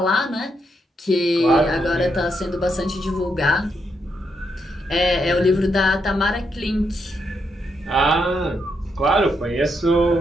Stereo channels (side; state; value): both; normal; correlation 0.80